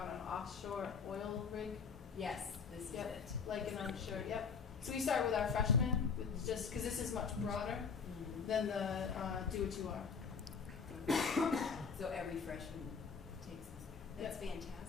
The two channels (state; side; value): quieter; right; 5.7 dB